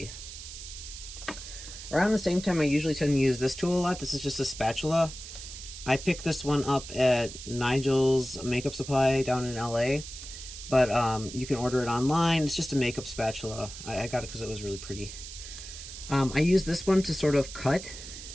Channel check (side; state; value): right; noise; hiss, 12 dB below the sound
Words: Around the same time, I usually tend to use this tool a lot. This is just a spatula. I picked this one up at Nigel's Makeup Supply down in LA, but you can order it online. It's just a makeup spatula. I got it because it was really pretty. I use this one to sort of cut